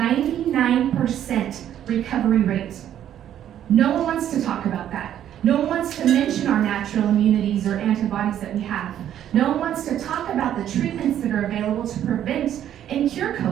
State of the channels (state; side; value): quieter; left; 10.8 dB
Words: recovery rate. No one wants to talk about that. No one wants to mention our natural immunities or antibodies that we have. No one wants to talk about the treatments that are available to prevent and cure